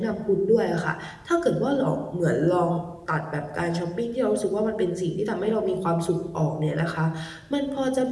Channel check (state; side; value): identical; both; correlation 1.00